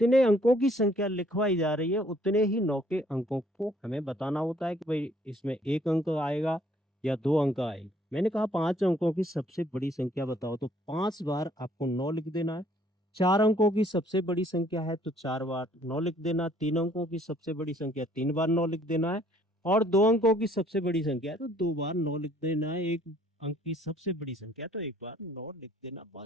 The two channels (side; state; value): both; normal; correlation 0.62